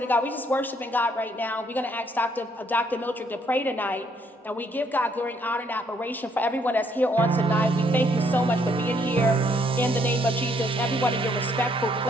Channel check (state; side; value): normal; both; correlation 0.69